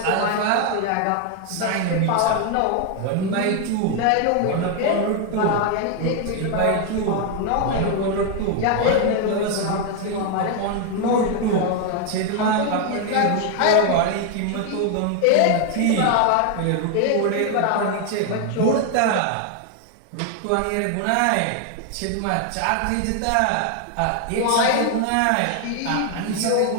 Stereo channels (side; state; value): both; different; correlation 0.01